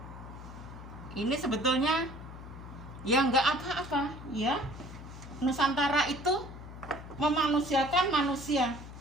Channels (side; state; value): left; noise; hum, 13 dB below the sound